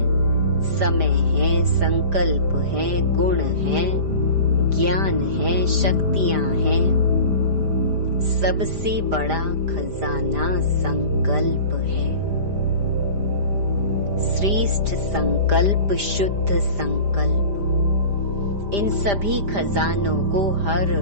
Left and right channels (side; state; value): left; late; 5.0 ms